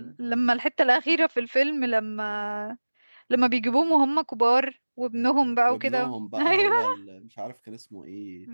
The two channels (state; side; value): inverted; both; correlation -1.00